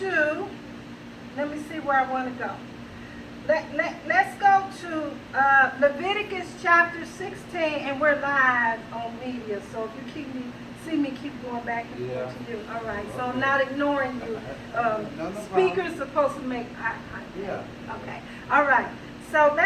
Let me see where I want to go. Let's go to Leviticus chapter 16, and we're live on media. So if you see me keep going back and forth to you. All right. So I'm not ignoring you. No Speakers supposed to make eye contact. Yeah. Okay. All right. So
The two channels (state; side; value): identical; both; correlation 1.00